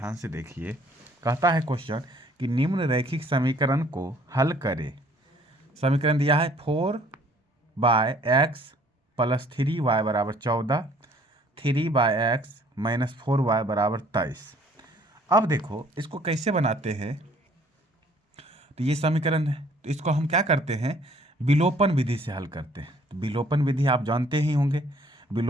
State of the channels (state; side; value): normal; both; correlation 0.58